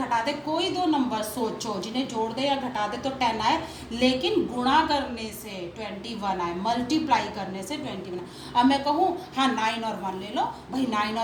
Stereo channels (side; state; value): both; identical; correlation 1.00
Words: दें। कोई दो नंबर सोचो जिन्हें जोड़ दें या घटा दें तो 10 आए, लेकिन गुणा करने से 21 आए, मल्टीप्लाई करने से 21। अब मैं कहूँ हाँ 9 और 1 ले लो, भाई 9